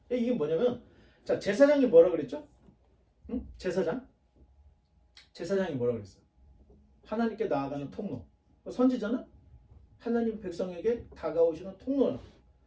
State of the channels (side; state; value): both; identical; correlation 1.00